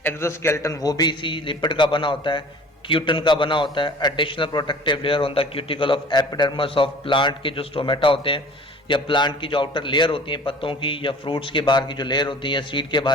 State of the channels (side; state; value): both; normal; correlation 0.46